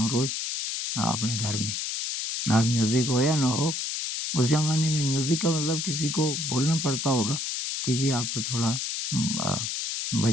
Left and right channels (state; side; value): noise; left; hiss, 2 dB below the sound